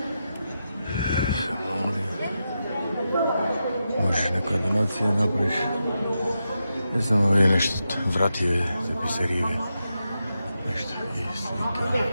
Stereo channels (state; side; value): inverted; both; correlation -0.88